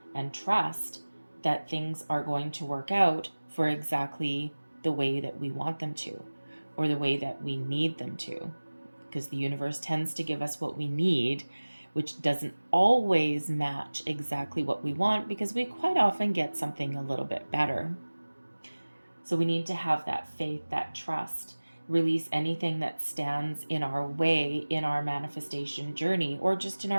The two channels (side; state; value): both; inverted; correlation -1.00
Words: and trust that things are going to work out for exactly the way that we want them to, or the way that we need them to, because the universe tends to give us what we need, which doesn't always match exactly what we want, because we quite often get something a little bit better. So we need to have that faith, that trust, release anything that stands in our way in our manifestation journey, or just in